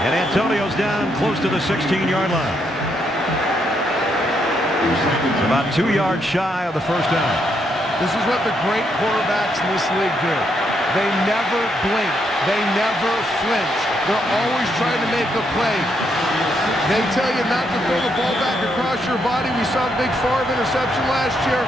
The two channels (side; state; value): both; normal; correlation 0.77